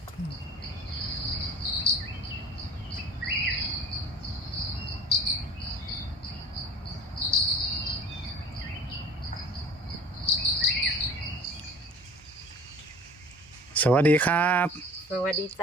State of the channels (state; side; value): normal; both; correlation 0.43